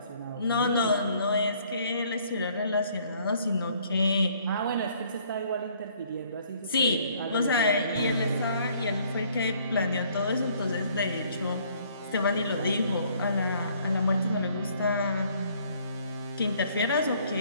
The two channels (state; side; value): inverted; both; correlation -0.62